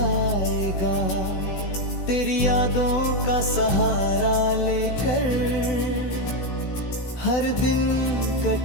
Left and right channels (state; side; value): late; right; 16 ms